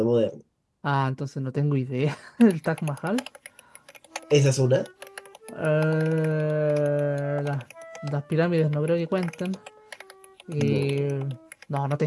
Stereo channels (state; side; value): identical; both; correlation 1.00